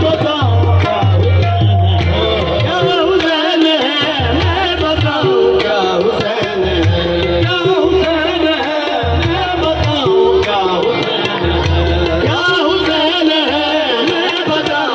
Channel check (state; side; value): identical; both; correlation 1.00